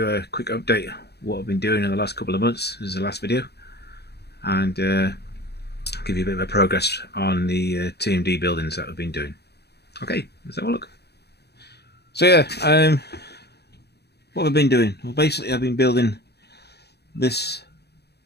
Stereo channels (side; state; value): right; late; 0.48 ms